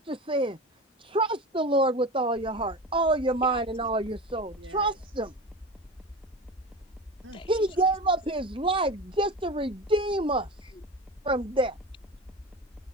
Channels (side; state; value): both; normal; correlation 0.29